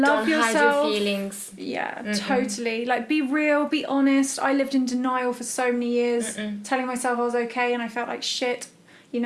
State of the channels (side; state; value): both; identical; correlation 1.00